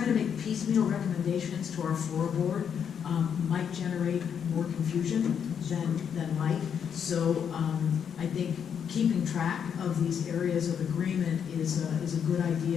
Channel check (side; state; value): right; quieter; 7.8 dB